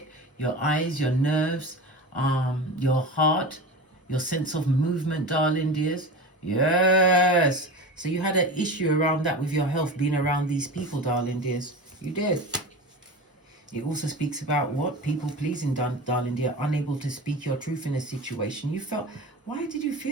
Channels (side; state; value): both; normal; correlation 0.29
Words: your eyes, your nerves, your heart, your sense of movement, darling dears. Yes. So you had an issue around that with your health, being around these people, darling dears. You did. It also speaks about what? People pleasing, darling dear. Unable to speak your truth in a situation. You felt, why did you